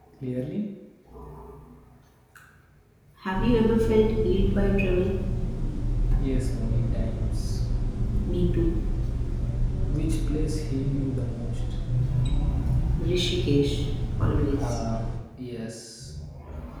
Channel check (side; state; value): both; identical; correlation 1.00